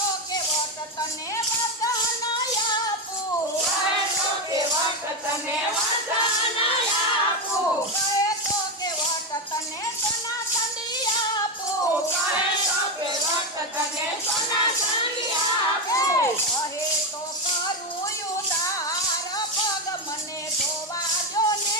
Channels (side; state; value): both; normal; correlation 0.11